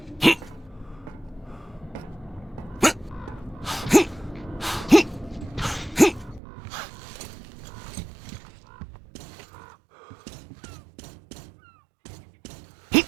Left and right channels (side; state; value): left; drops out; at 6.4 s